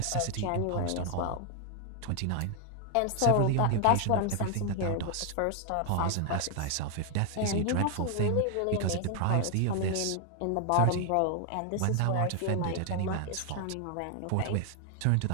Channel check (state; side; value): different; both; correlation 0.00